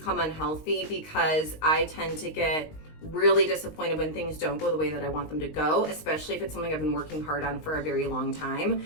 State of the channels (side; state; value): right; late; 19 ms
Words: unhealthy because I tend to get really disappointed when things don't go the way that I want them to go, especially if it's something I've been working hard on for a very long time.